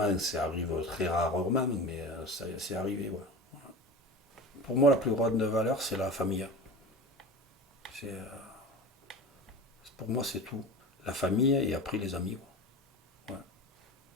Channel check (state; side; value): normal; both; correlation 0.31